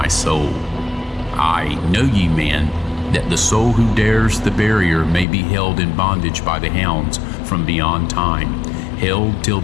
soul. I, know ye, man, that the soul who dares the barrier may be held in bondage by the hounds from beyond time, held till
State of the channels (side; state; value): right; drops out; at 5.2 s